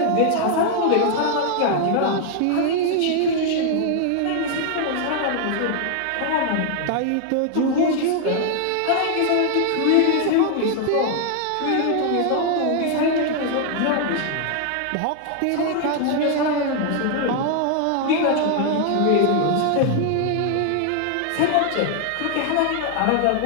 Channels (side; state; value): both; different; correlation 0.00